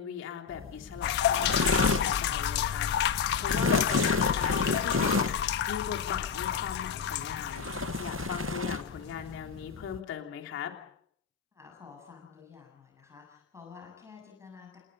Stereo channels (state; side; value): quieter; right; 6.2 dB